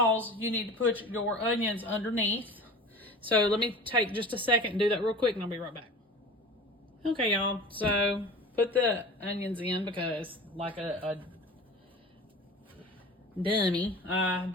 you need to put your onions underneath. So let me take just a second and do that real quick, and I'll be right back. Okay, y'all, so put the onions in because like a dummy, I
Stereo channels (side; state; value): both; normal; correlation 0.37